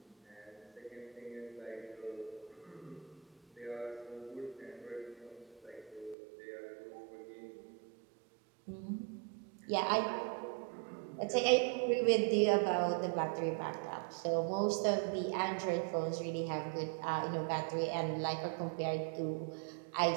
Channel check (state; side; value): drops out; left; at 6.2 s